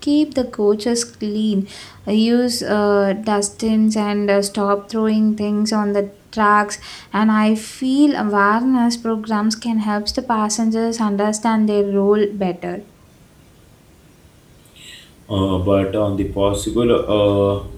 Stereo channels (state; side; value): identical; both; correlation 1.00